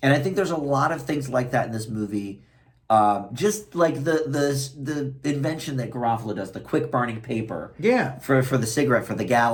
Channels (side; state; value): both; identical; correlation 1.00